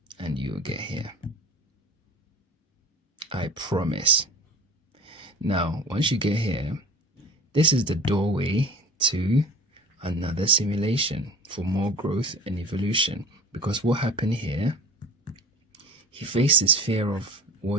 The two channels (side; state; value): both; normal; correlation 0.40